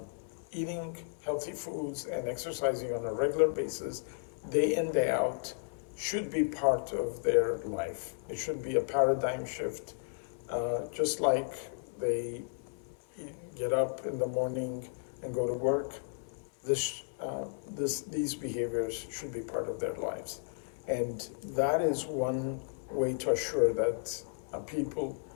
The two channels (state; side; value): silent; right; 55 dB below the other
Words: eating healthy foods and exercising on a regular basis, day in, day out, should be part of their life. It should be a paradigm shift, just like they get up in the morning and go to work. These behaviors should be part of their lives, and that is one way to assure that people